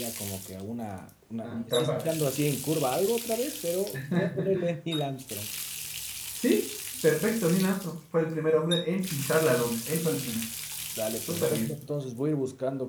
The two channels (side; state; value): both; identical; correlation 1.00